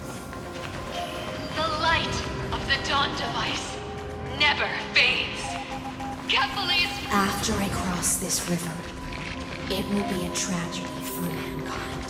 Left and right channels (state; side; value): identical; both; correlation 1.00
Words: The light of the dawn device never fades. Carefully. After I cross this river, it will be a tragedy for